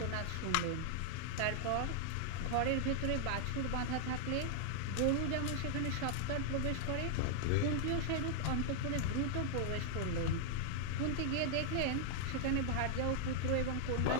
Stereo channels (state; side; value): different; both; correlation 0.00